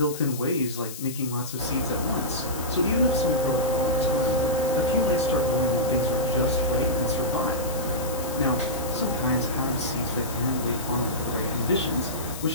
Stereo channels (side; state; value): left; noise; hiss, 11 dB below the sound